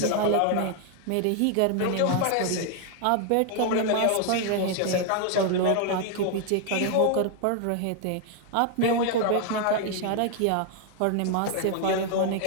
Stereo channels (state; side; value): different; both; correlation 0.00